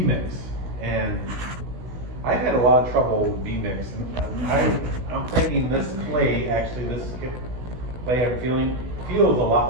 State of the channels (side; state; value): left; late; 16 ms